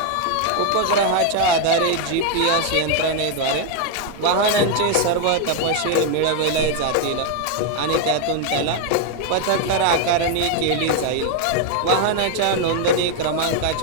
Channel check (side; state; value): both; different; correlation 0.01